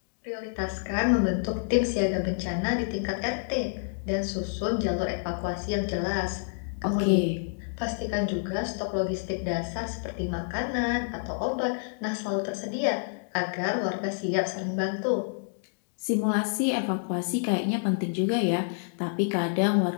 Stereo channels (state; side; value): silent; right; digital silence